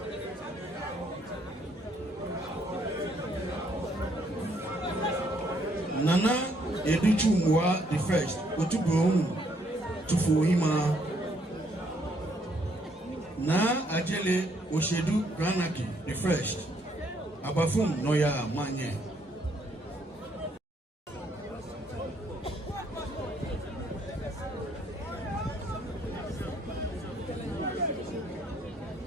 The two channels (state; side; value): normal; both; correlation 0.69